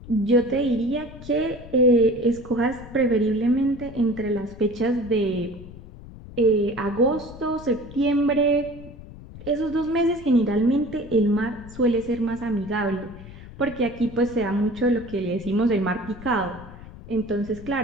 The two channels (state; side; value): noise; left; rumble, 16 dB below the sound